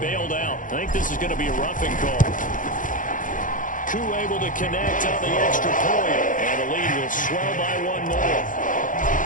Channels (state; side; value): late; right; 0.38 ms